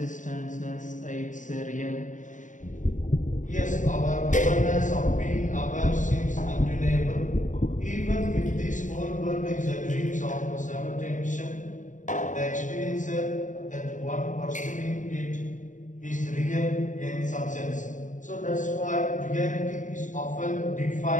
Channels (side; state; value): right; late; 0.37 ms